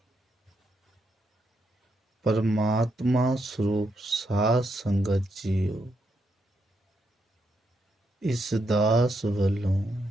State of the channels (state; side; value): normal; both; correlation 0.80